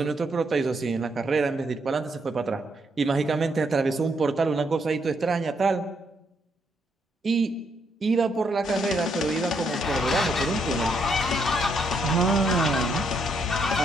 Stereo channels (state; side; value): normal; both; correlation 0.75